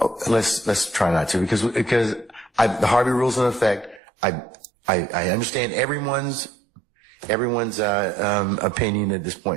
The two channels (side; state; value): left; drops out; at 4.0 s